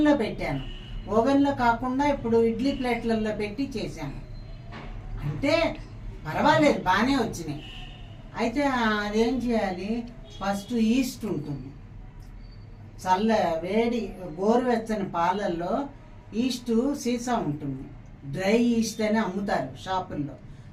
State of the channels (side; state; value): both; identical; correlation 1.00